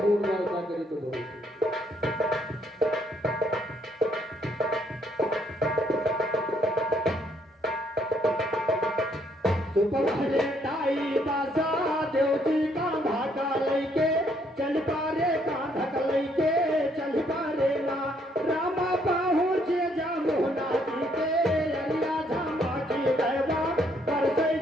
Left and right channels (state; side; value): normal; both; correlation 0.69